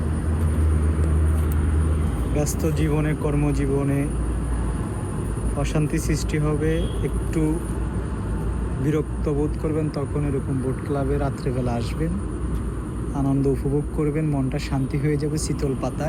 ব্যস্ত জীবনে, কর্মজীবনে অশান্তি সৃষ্টি হবে, একটু বিরক্ত বোধ করবেন, তখন এরকম বোট ক্লাবে রাত্রেবেলা আসবেন, আনন্দ উপভোগ করবেন, মনটা শান্তি হয়ে যাবে। শীতল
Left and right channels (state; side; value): identical; both; correlation 1.00